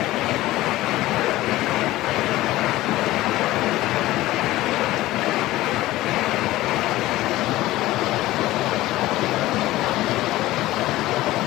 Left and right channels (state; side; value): quieter; right; 16.8 dB